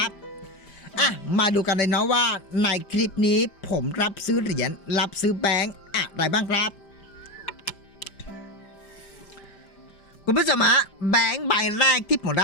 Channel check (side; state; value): right; late; 5.0 ms